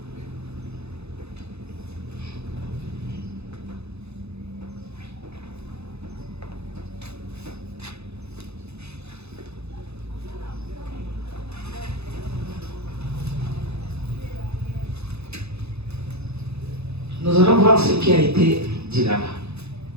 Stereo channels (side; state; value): left; late; 0.80 ms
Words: Nous allons voir ce qui a été dit là-bas.